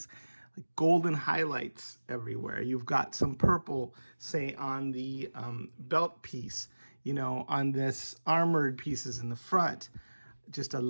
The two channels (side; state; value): both; inverted; correlation -1.00